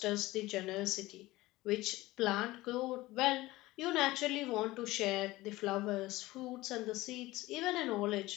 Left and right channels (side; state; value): right; quieter; 18.7 dB